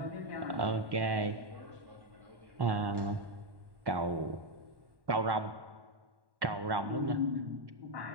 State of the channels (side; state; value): left; late; 1.1 ms